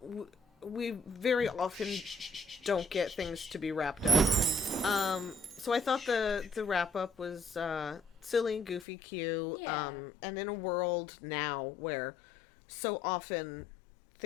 we very often don't get things to be wrapped up. So I thought the wrap up was silly, goofy, cute. Yeah. And in a world now where so often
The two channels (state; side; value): drops out; right; at 8.8 s